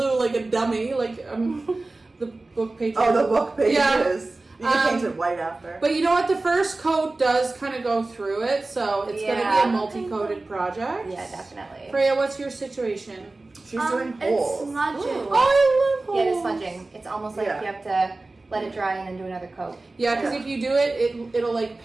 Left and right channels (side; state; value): left; quieter; 3.2 dB